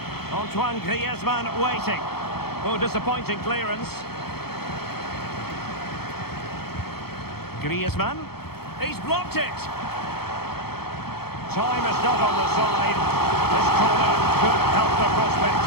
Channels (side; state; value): right; late; 0.96 ms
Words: Antoine Griezmann waiting. Oh, disappointing clearance. Griezmann. He's blocked it. Time is not on the side. This corner could help the prospects